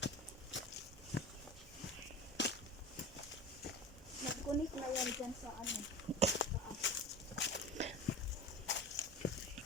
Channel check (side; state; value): both; normal; correlation 0.33